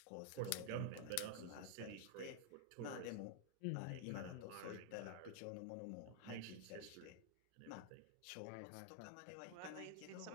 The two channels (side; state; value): both; different; correlation 0.00